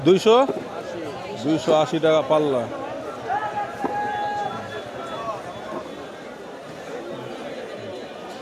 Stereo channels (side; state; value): both; identical; correlation 1.00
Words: 280 টাকা পাল্লা।